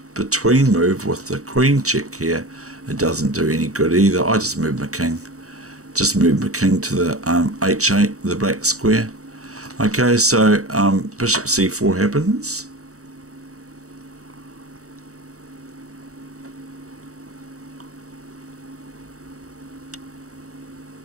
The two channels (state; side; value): late; left; 0.65 ms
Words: between move with the queen check here, it doesn't do any good either. I just move my king, to the h8, the black square. Okay, so bishop c4 happens.